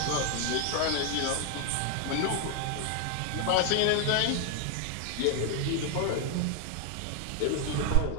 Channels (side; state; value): both; different; correlation 0.00